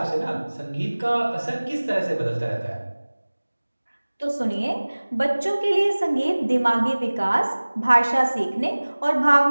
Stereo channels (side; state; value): both; inverted; correlation -1.00